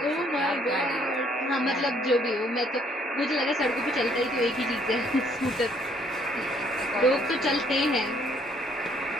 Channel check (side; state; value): both; normal; correlation 0.65